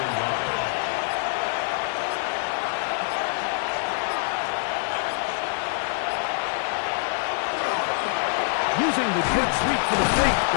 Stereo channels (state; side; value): silent; right; 62 dB below the other